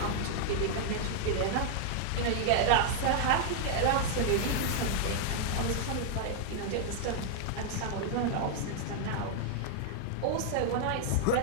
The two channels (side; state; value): both; different; correlation -0.01